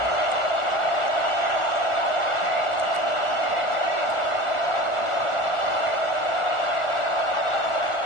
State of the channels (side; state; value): right; late; 1.4 ms